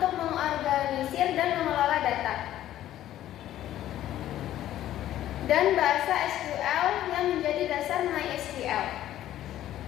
mengorganisir dan mengelola data. Dan bahasa SQL yang menjadi dasar MySQL.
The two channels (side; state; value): right; quieter; 12.8 dB